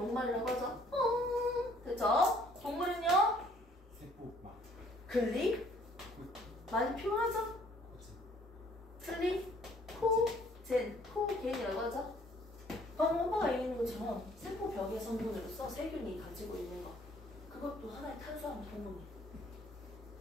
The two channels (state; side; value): normal; both; correlation 0.59